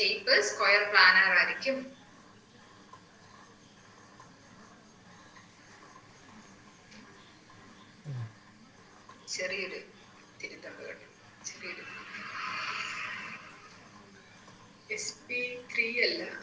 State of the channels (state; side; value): identical; both; correlation 1.00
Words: സ്ക്വയർ പ്ലാനർ ആയിരിക്കും. ചെറിയൊരു തിരുത്തണ്ട് കേട്ടോ. ചെറിയൊരു sp3 അല്ല,